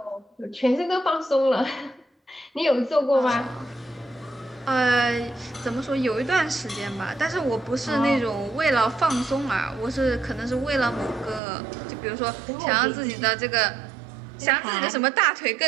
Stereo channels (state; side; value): drops out; left; at 11.4 s